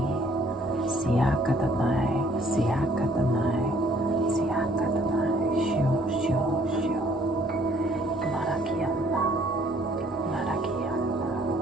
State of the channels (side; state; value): both; normal; correlation 0.61